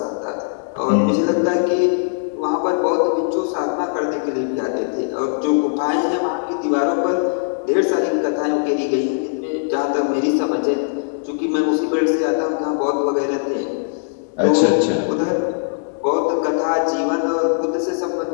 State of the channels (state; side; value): silent; right; 66 dB below the other